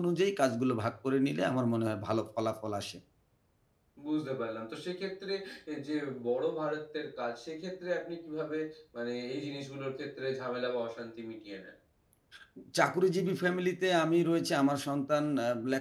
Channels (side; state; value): both; identical; correlation 1.00